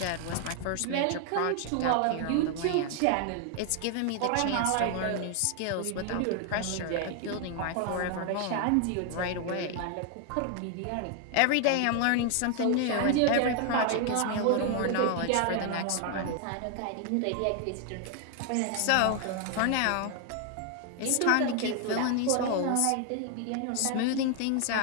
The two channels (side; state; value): both; different; correlation 0.00